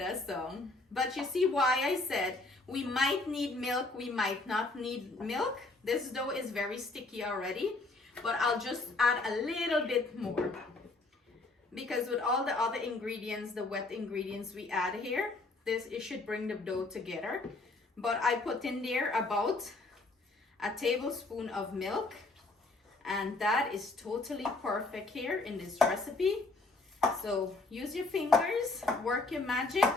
song. But you see why I said we might need milk, we might not need milk. This dough is very sticky already, but I'll just add a little bit more. Because with all the other ingredients, the wet ingredients we add here, it should bring the dough together. But I put in there about a tablespoon of milk, and that is totally perfect here in this recipe. So use your fingers, work your magic,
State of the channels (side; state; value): right; quieter; 3.2 dB